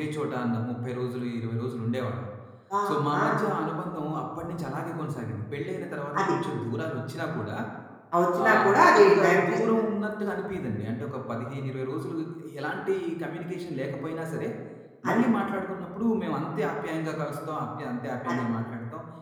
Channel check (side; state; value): both; identical; correlation 1.00